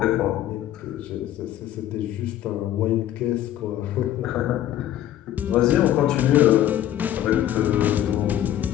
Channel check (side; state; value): right; quieter; 12.2 dB